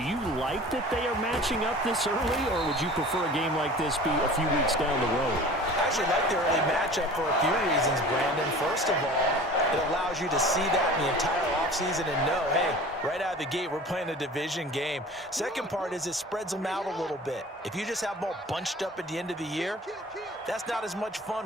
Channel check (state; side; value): normal; both; correlation 0.41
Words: like that they are matching up this early, or would you prefer a game like this be a few weeks down the road? I actually like the early matchup for a few reasons, Brandon. First of all, it allows you to see that in the entire offseason and know, hey, right out of the gate, we're playing a division game. Second part is it spreads them out a little bit. If you just have them all bunched up at the end of the year, that's not as much